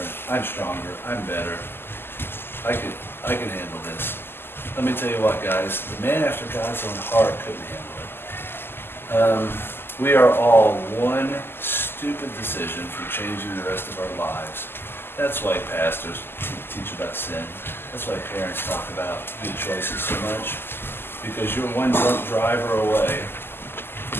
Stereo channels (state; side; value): late; right; 0.11 ms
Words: I'm stronger, I'm better, I can handle this. Let me tell you what, guys, the man after God's own heart couldn't handle it. We are all one stupid decision from changing the rest of our lives. That's why pastors teach about sin. That's why parents talk about good choices so much. Because you're one drunk driver away